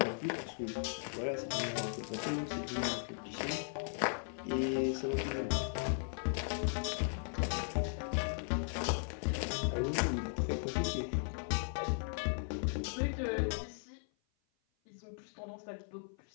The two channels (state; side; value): silent; right; 53 dB below the other